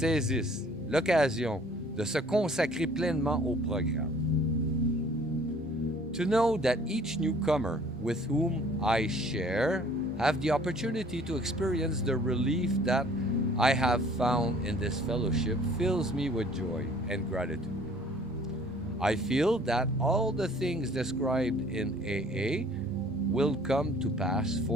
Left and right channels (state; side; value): normal; both; correlation 0.54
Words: l'occasion de se consacrer pleinement au programme. To know that each newcomer with whom I share have the opportunity to experience the relief that I have found in this fellowship fills me with joy and gratitude. I feel that all the things described in AA will come to pass